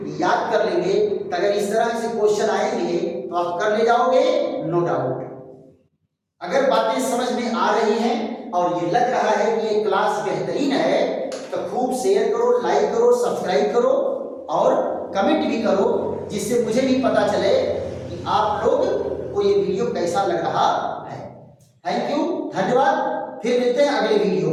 याद कर लेंगे तो अगर इस तरह से क्वेश्चन आएंगे तो आप कर ले जाओगे नो डाउट। अगर बातें समझ में आ रही हैं और ये लग रहा है कि ये क्लास बेहतरीन है तो खूब शेयर करो लाइक करो सब्सक्राइब करो और कमेंट भी करो जिससे मुझे भी पता चले कि आप लोग को ये वीडियो कैसा लग रहा है। थैंक यू धन्यवाद। फिर मिलते हैं अगले वीडियो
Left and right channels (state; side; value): identical; both; correlation 1.00